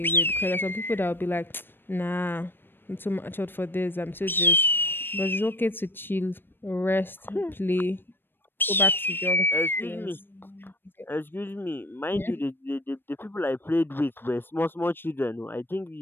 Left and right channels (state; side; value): late; right; 0.098 ms